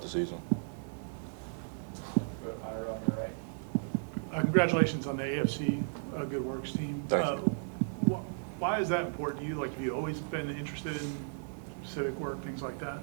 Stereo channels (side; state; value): left; silent; 55 dB below the other